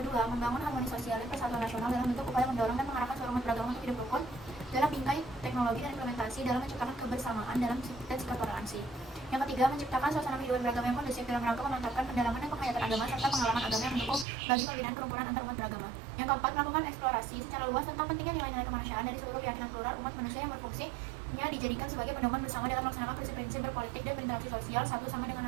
kedua, membangun harmoni sosial dan persatuan nasional dalam bentuk upaya mendorong dan mengarahkan seluruh umat beragama untuk hidup rukun dalam bingkai teknologi dan implementasi dalam menciptakan kebersamaan dalam dan sikap toleransi. Yang ketiga, menciptakan suasana kehidupan beragama yang kondusif dalam rangka memantapkan pendalaman dan penghayatan agama serta pengalaman agama yang mendukung bagi pembinaan kerukunan antar umat beragama. Yang keempat, melakukan eksplorasi secara luas tentang pentingnya nilai-nilai kemanusiaan dari seluruh keyakinan plural umat manusia yang berfungsinya dijadikan sebagai pedoman bersama dalam melaksanakan prinsip-prinsip berpolitik dan berinteraksi sosial satu sama dengan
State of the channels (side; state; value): left; drops out; at 14.2 s